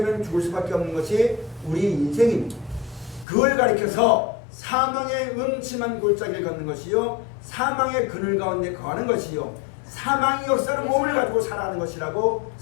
죽을 수밖에 없는 것이 우리 인생입니다. 그걸 가리켜서 사망의 음침한 골짜기를 걷는 것이요, 사망의 그늘 가운데 거하는 것이요, 사망의 역사는 몸을 가지고 살아가는 것이라고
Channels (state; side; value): drops out; right; at 3.2 s